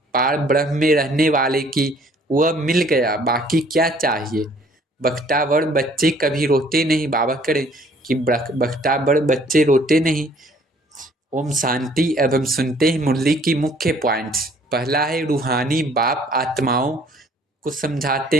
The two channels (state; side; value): normal; both; correlation 0.58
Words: पार ब्रह्म में रहने वाले की, वह मिल गया, बाकी क्या चाहिए। बख्तावर बच्चे कभी रोते नहीं। बाबा करें कि बख्तावर बच्चे रोते नहीं। ओम शांति। अब हम सुनते हैं मुरली की मुख्य पॉइंट्स। पहला है रूहानी बाप आत्माओं को